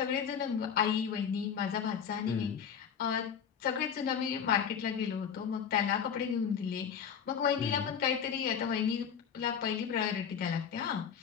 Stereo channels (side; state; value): right; quieter; 7.6 dB